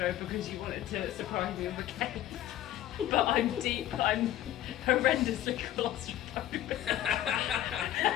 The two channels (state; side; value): quieter; right; 12.9 dB